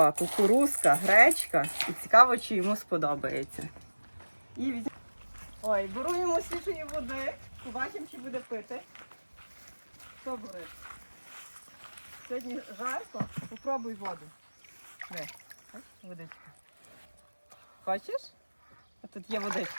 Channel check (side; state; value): both; inverted; correlation -1.00